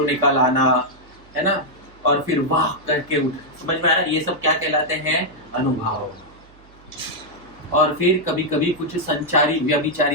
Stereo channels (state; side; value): noise; right; hum, 26 dB below the sound